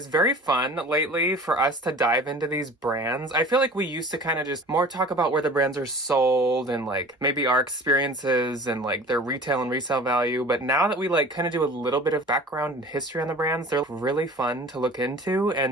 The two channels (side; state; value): both; normal; correlation 0.42